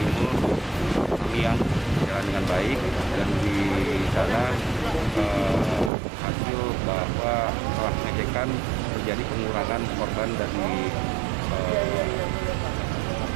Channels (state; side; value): drops out; left; at 5.9 s